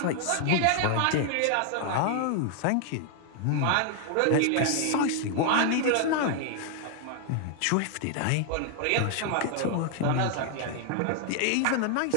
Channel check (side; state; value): both; different; correlation 0.00